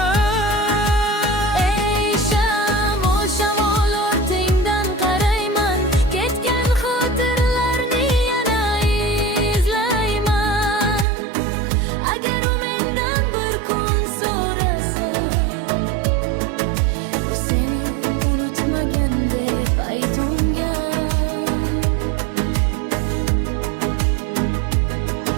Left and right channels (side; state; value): left; drops out; at 11.1 s